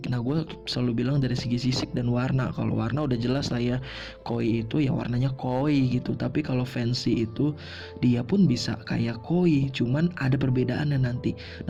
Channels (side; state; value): both; identical; correlation 1.00